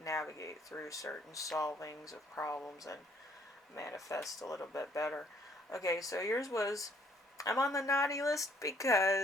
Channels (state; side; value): normal; both; correlation 0.64